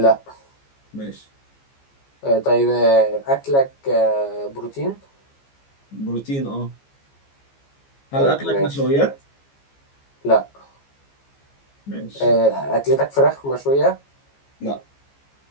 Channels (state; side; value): late; right; 15 ms